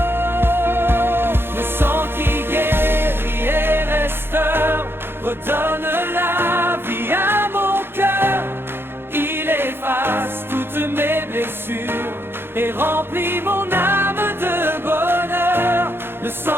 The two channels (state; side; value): late; left; 0.11 ms